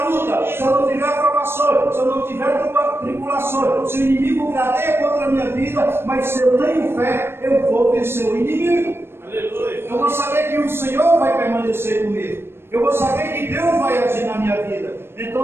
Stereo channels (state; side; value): late; left; 0.12 ms